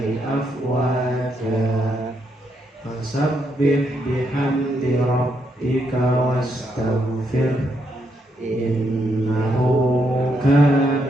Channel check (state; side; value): normal; both; correlation 0.78